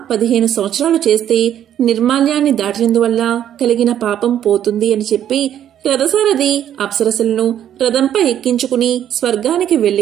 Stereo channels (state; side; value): quieter; left; 10.5 dB